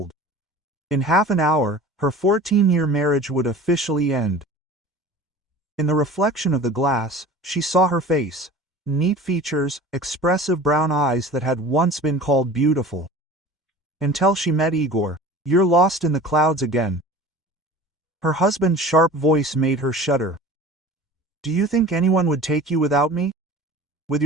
In half an hour, her 14-year marriage would officially end. In the reflection of the glass, she saw her face, neat features, expressive brown eyes that had once been called beautiful. Until she met Igor. "You're lost in the clouds again." Her husband's sharp voice made her shudder. "Do you think anyone would take you without me? With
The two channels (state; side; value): normal; both; correlation 0.40